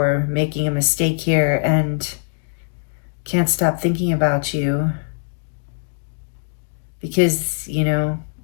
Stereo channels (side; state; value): right; silent; 58 dB below the other